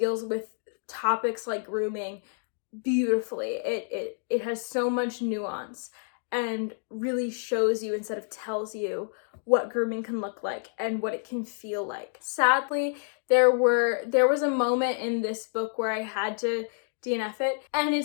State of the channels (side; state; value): right; silent; digital silence